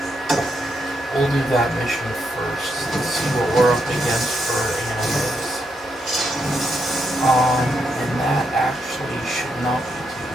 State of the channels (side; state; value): both; normal; correlation 0.80